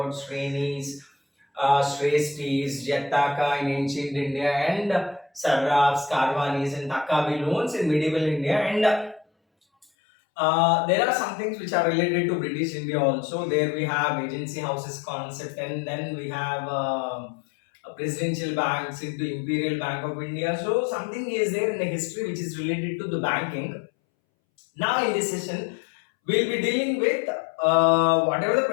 Shrenis, Shrestris, Jataka in ancient India, and Sarrafs, Karvanis, and Takabi loans in medieval India. And there are some things which are related to British India also. There we have agency houses concept, and then we have presidential banks into Imperial Bank of India. So something is there in the history which is related to the banking. Now in this session, we'll be dealing with whatever the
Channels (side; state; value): right; drops out; at 9.9 s